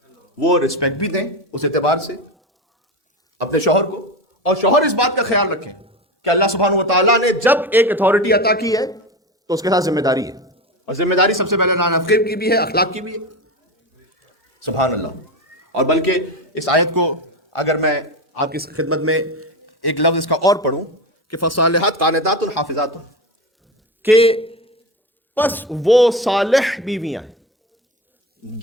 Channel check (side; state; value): both; normal; correlation 0.21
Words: وہ رسپیکٹ بھی دیں اس اعتبار سے اپنے شوہر کو، اور شوہر اس بات کا خیال رکھیں کہ اللہ سبحانہ و تعالیٰ نے جب ایک اتھارٹی عطا کی ہے تو اس کے ساتھ ذمہ داری ہے، اور ذمہ داری سب سے پہلے نانفقی کی بھی ہے، اخلاق کی بھی ہے۔ سبحان اللہ۔ اور بلکہ اس آیت کو اگر میں آپ کی خدمت میں ایک لفظ اس کا اور پڑھوں کہ فصالحات قانتات حافظات، کہ پس وہ صالح بیویاں ہیں